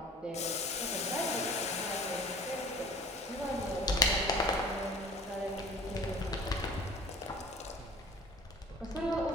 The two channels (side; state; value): both; normal; correlation 0.44